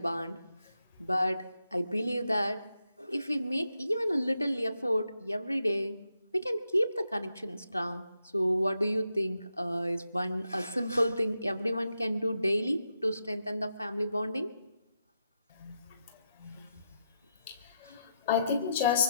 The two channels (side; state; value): both; inverted; correlation -0.83